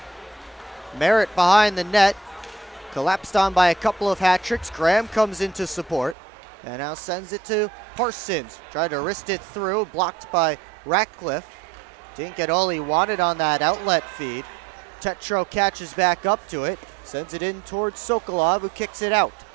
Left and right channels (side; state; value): left; drops out; at 6.2 s